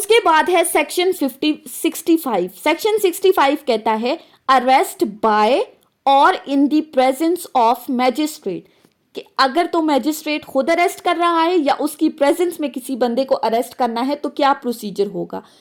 बाद है सेक्शन 65। सेक्शन 65 कहता है अरेस्ट बाय और in the presence of magistrate, कि अगर तो मैजिस्ट्रेट खुद अरेस्ट कर रहा है या उसकी प्रेजेंस में किसी बंदे को अरेस्ट करना है तो क्या प्रोसीजर होगा।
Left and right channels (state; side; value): identical; both; correlation 1.00